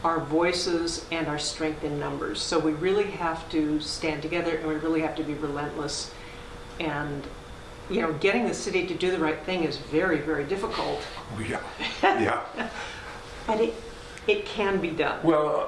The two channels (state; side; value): identical; both; correlation 1.00